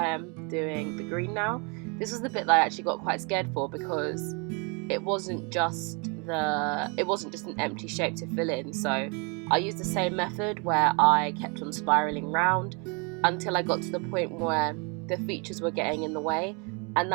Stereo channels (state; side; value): quieter; left; 33.1 dB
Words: am doing the green now. This was the bit that I actually got quite scared for, because it wasn't just an empty shape to fill in. So I used the same method where I kept on spiraling round until I got to the point where the features were getting in the way, and